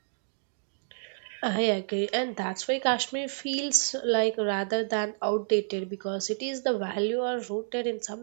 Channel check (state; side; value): silent; left; digital silence